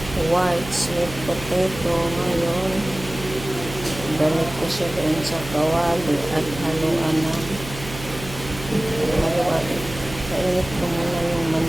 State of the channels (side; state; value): right; noise; hum, 12 dB below the sound